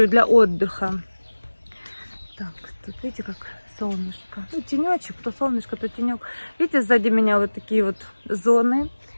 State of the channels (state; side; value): inverted; both; correlation -1.00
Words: для отдыха. Так, тут видите, как солнышко. Ну, тенечек, то солнышко, то тенек. Видите, сзади меня вот такие вот зоны.